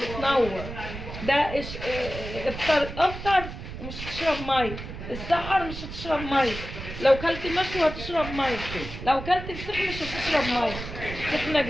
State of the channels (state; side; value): noise; right; rumble, 9 dB below the sound